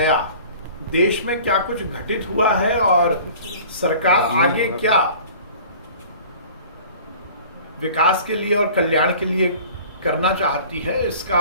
देश में क्या कुछ घटित हुआ है और सरकार आगे क्या विकास के लिए और कल्याण के लिए करना चाहती है,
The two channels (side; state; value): both; inverted; correlation -0.45